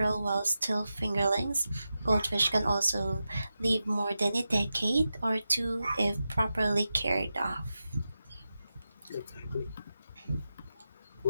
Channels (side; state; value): both; inverted; correlation -0.91